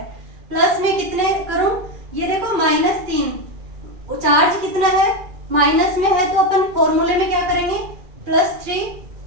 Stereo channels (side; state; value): left; late; 2.4 ms